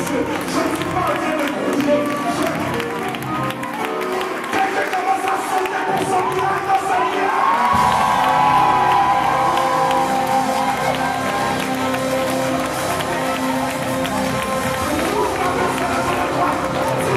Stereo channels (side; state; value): both; identical; correlation 1.00